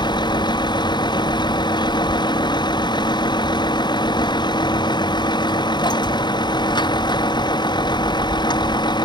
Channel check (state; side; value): late; right; 0.21 ms